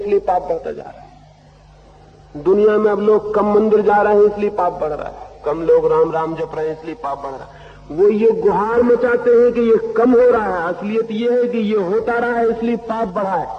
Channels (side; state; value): both; identical; correlation 1.00